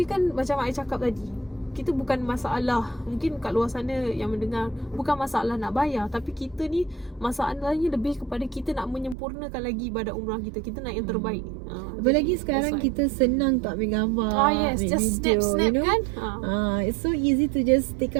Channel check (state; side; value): drops out; left; at 9.2 s